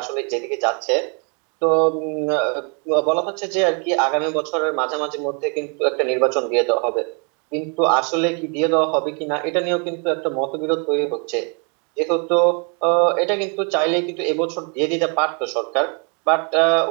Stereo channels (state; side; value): quieter; left; 37.2 dB